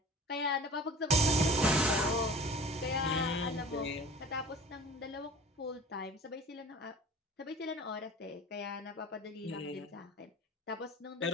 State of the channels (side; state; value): both; normal; correlation 0.41